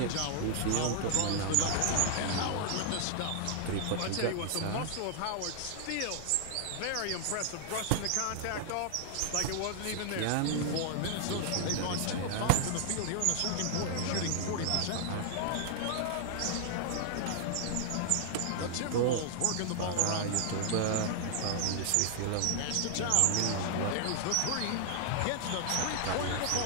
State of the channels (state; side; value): different; both; correlation 0.00